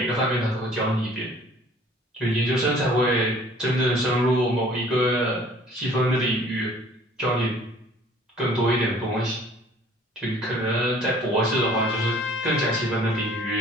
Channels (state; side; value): normal; both; correlation 0.53